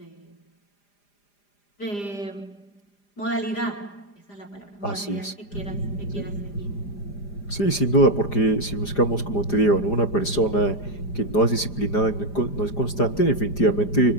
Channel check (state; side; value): late; right; 4.9 ms